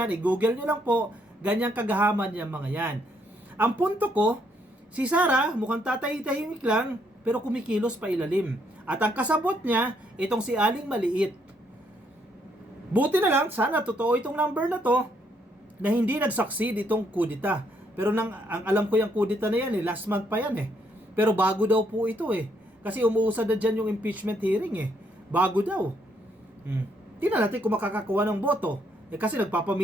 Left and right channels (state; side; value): normal; both; correlation 0.72